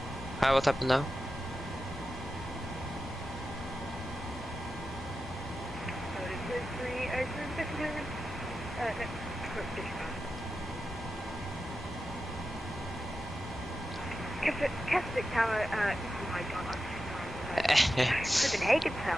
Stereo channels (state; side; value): normal; both; correlation 0.91